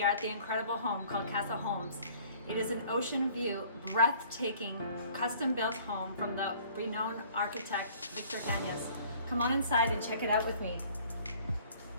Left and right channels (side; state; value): both; inverted; correlation -0.53